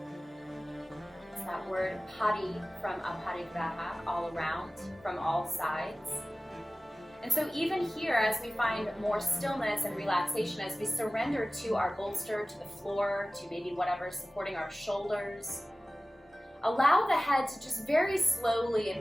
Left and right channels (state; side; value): normal; both; correlation 0.97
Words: It's that word pari from aparigraha, all around, from all sides. And so even here, as we find more stillness and relaxation, as we surrender to our bolster, to the floor, to maybe whatever's supporting our shoulders, allow the head to just very slowly